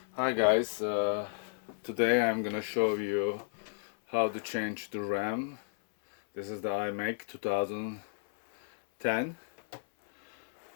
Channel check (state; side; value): silent; right; 56 dB below the other